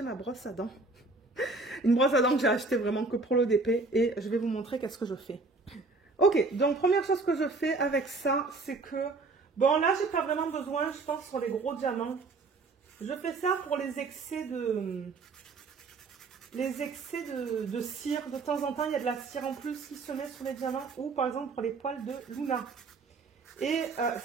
ma brosse à dents. Une brosse à dents que j'ai achetée vraiment que pour l'ODP et je vais vous montrer qu'est-ce que je fais. Ok, donc première chose que je fais avec ça, c'est que... Bon, là, j'ai pas vraiment besoin, je pense, sur les gros diamants. Je fais ça pour les excès de... de cire. De temps en temps, il y a de la cire en plus qui se met sur les diamants ou par exemple pour les poils de Luna. Et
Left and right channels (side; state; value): left; quieter; 3.7 dB